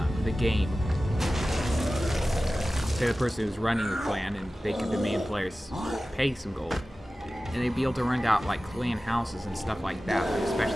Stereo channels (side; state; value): both; normal; correlation 0.96